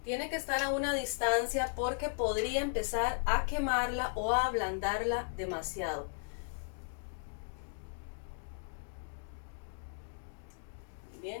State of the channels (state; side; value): silent; right; digital silence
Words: Tiene que estar a una distancia porque podría empezar a quemarla o a ablandarla demasiado.